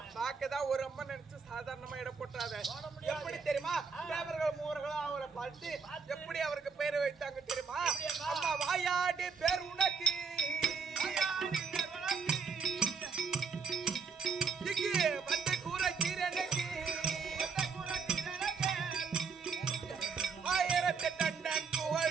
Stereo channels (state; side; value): quieter; left; 5.4 dB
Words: பார்க்கதான் ஒரு அம்மா நினைச்சு சாதாரணமா இடம் போட்டாத. எப்படி தெரியுமா, தேவர்கள் மூவர்களும் அவரை பார்த்து எப்படி அவருக்கு பேரை வைத்தாங்க தெரியுமா? அம்மா வாயாடி பேர் உனக்கு வந்து கூற கீரனுக்கு 1000 டன்